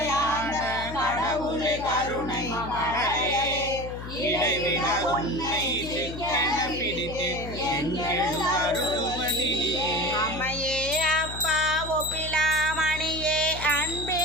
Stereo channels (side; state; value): left; noise; hum, 10 dB below the sound